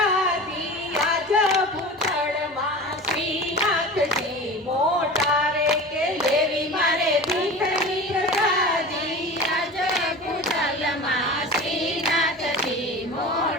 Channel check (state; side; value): normal; both; correlation 0.34